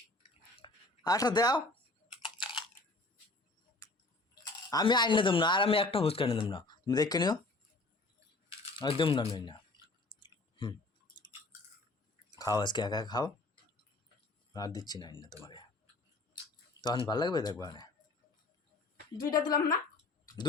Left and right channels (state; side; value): quieter; right; 3.1 dB